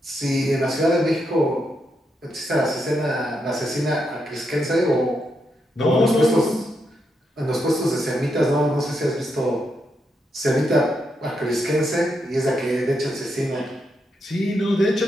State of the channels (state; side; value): normal; both; correlation 0.82